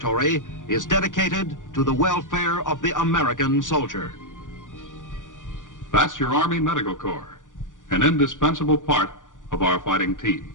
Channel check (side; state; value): right; late; 0.87 ms